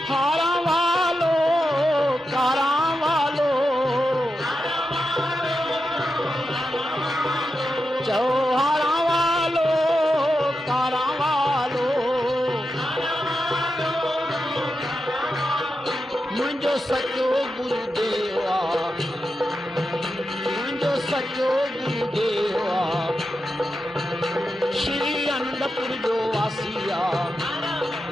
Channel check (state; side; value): normal; both; correlation 0.89